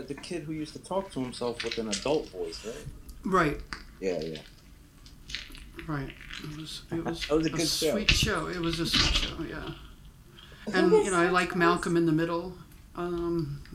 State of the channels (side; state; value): both; identical; correlation 1.00